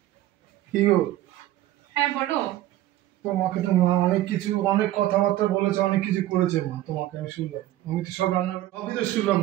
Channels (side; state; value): left; quieter; 14.9 dB